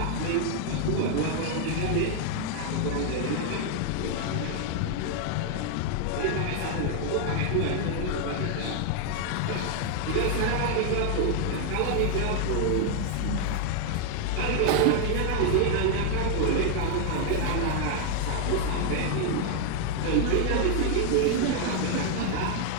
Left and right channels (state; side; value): different; both; correlation 0.00